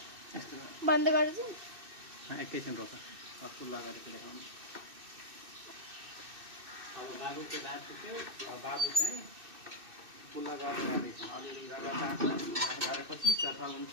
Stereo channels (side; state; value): left; late; 2.6 ms